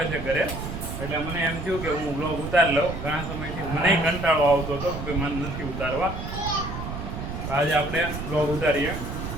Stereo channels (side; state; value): right; noise; rumble, 6 dB below the sound